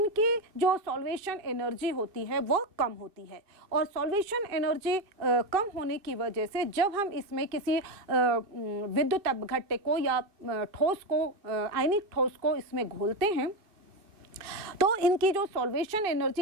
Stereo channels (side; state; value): left; late; 2.5 ms